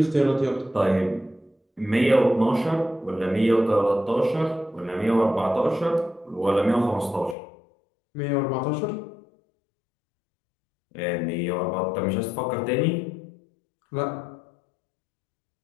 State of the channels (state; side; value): drops out; right; at 7.4 s